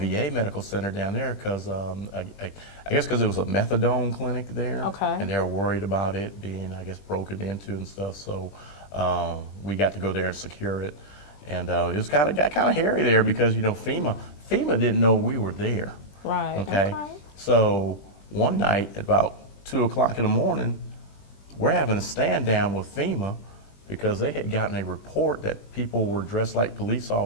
medical center down there because I guess because it was a methadone clinic there, and they were worried about it being, I guess, broken into and stuff. So we got to go there and secure it, And it was got kind of hairy there because, FEMA didn't know we were there. Right. Okay. So one night at about 2 o'clock in the morning, we're having a stand down with FEMA because they had gotten a report that people were dressed like police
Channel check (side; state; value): right; late; 20 ms